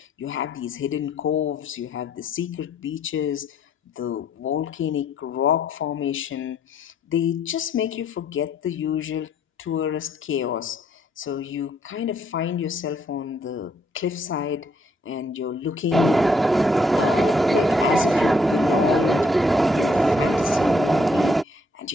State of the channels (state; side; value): normal; both; correlation 0.68